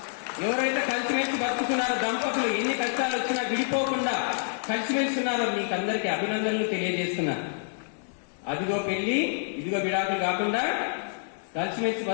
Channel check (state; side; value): silent; right; digital silence